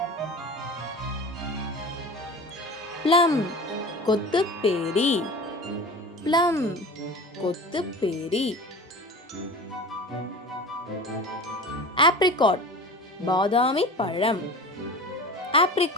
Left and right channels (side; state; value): both; normal; correlation 0.35